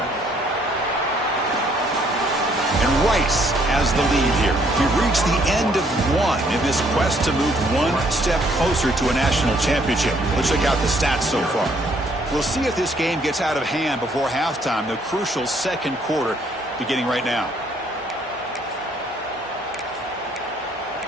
And Rice has the lead here. We've reached the end of one in this quest to move one step closer to a national championship. Let's check out the stats so far. We'll see if this game gets out of hand before halftime, the crucial second quarter beginning right now.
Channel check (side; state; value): both; normal; correlation 0.66